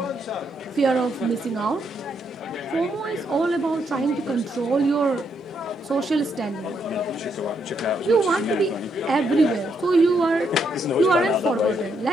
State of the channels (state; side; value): normal; both; correlation 0.76